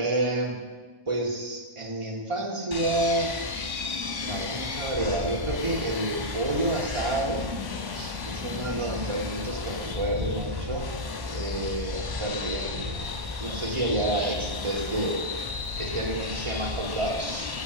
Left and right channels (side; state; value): left; late; 1.1 ms